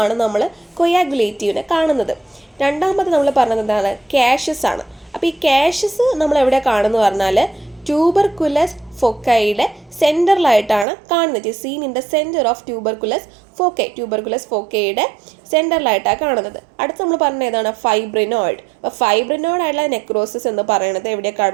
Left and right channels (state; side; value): drops out; left; at 10.9 s